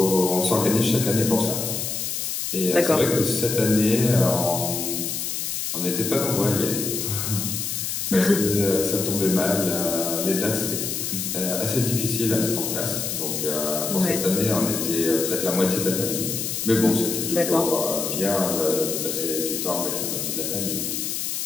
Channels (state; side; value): noise; left; hiss, 3 dB below the sound